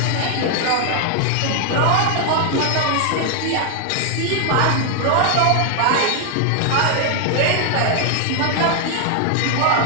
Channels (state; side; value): different; both; correlation 0.00